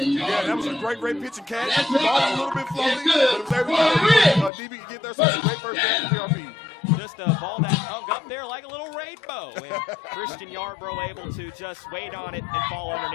that was a great pitch and catch. The ball was a little bit floating, but it was able to DB get there. So it's a great first down for PRP. Just a ball that hung up there like a little rainbow. And Christian Yarbrough able to just wait on it and fall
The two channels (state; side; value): drops out; right; at 4.5 s